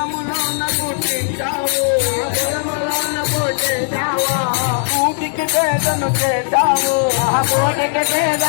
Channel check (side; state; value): right; silent; digital silence